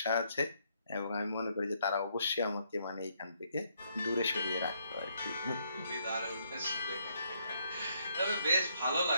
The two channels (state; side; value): inverted; both; correlation -0.72